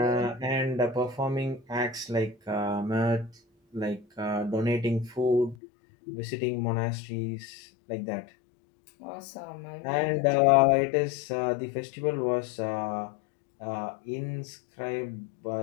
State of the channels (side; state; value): right; drops out; at 5.6 s